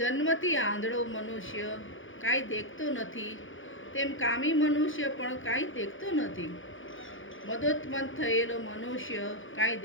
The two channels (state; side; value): late; right; 0.57 ms